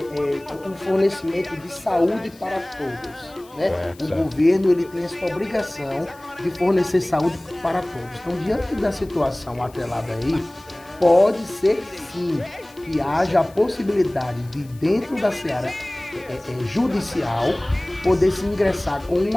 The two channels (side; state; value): left; noise; hiss, 26 dB below the sound